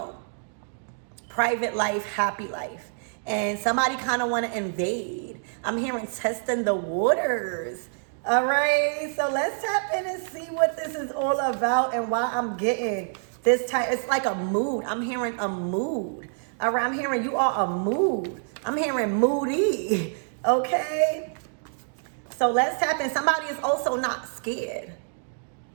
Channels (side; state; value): left; silent; digital silence